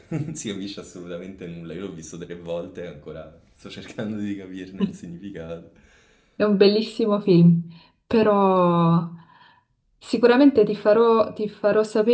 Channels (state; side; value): identical; both; correlation 1.00